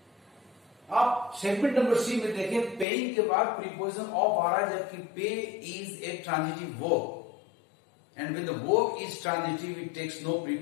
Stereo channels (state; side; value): drops out; right; at 2.9 s